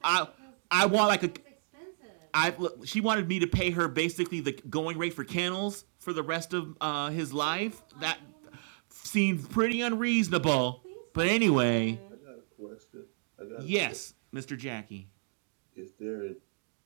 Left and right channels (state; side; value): silent; left; digital silence